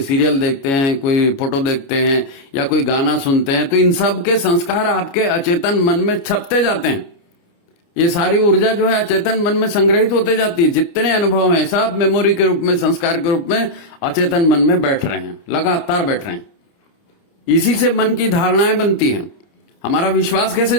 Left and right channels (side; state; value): right; late; 29 ms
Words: सीरियल देखते हैं, कोई फोटो देखते हैं, या कोई गाना सुनते हैं, तो इन सब के संस्कार आपके अचेतन मन में छपते जाते हैं। ये सारी ऊर्जा जो है अचेतन मन में संग्रहित होते जाती है। जितने अनुभव हैं सब मेमोरी के रूप में, संस्कार के रूप में अचेतन मन में बैठ रहे हैं, लगातार बैठ रहे हैं। इसी से मन की धारणाएं बनती हैं। हमारा विश्वास कैसे